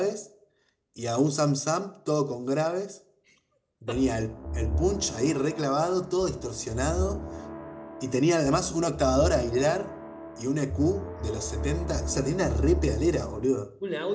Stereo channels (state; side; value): identical; both; correlation 1.00